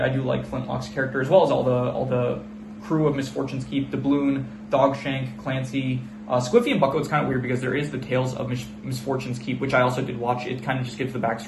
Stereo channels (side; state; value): both; identical; correlation 1.00